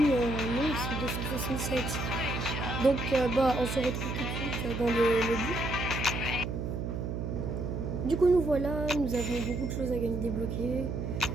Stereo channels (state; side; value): noise; right; hum, 3 dB below the sound